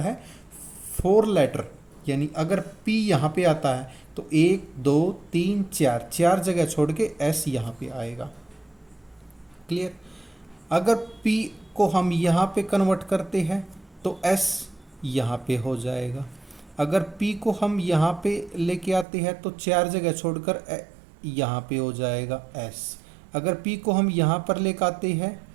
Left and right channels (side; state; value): left; drops out; at 19.1 s